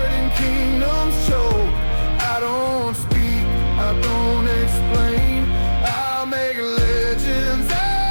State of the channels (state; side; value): inverted; both; correlation -1.00